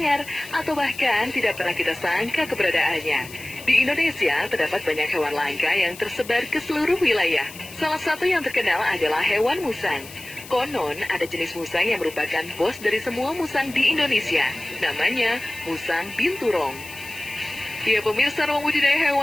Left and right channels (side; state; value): left; noise; hiss, 16 dB below the sound